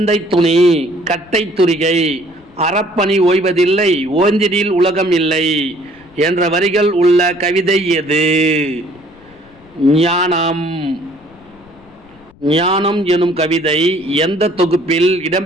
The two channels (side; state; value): left; noise; rumble, 27 dB below the sound